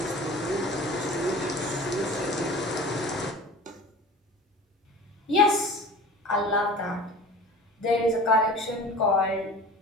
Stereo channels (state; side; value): normal; both; correlation 0.39